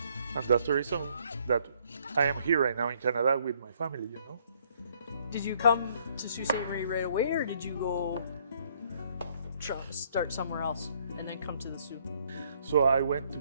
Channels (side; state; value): both; inverted; correlation -0.66